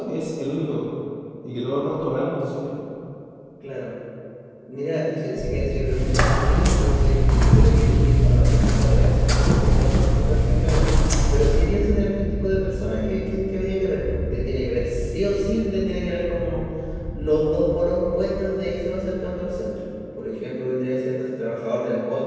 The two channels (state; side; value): identical; both; correlation 1.00